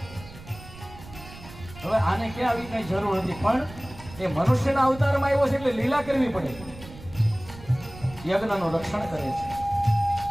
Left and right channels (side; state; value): right; noise; rumble, 17 dB below the sound